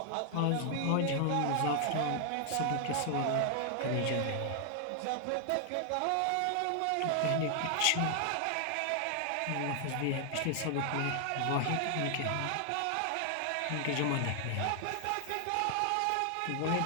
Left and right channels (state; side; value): different; both; correlation 0.00